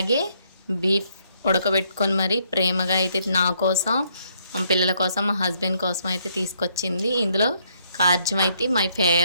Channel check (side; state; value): both; inverted; correlation -0.70